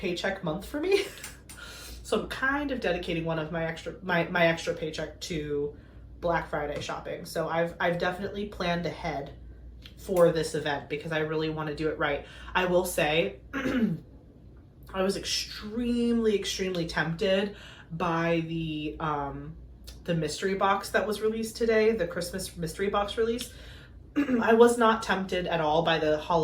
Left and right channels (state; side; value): identical; both; correlation 1.00